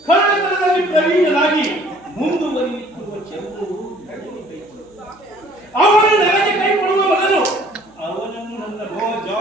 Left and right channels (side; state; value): right; noise; hum, 29 dB below the sound